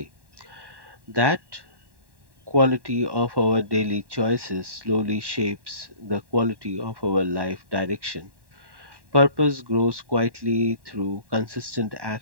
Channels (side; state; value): left; late; 1.1 ms